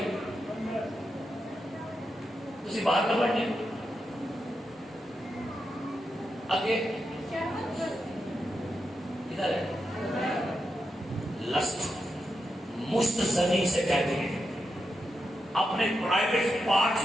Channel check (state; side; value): normal; both; correlation 0.86